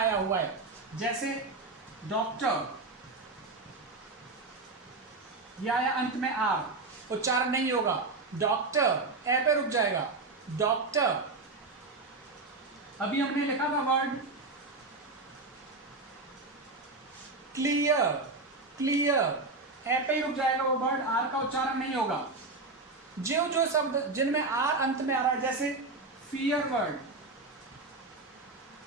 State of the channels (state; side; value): quieter; left; 3.5 dB